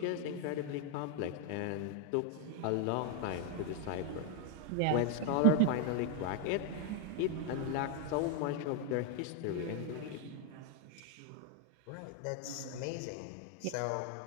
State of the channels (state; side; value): different; both; correlation 0.01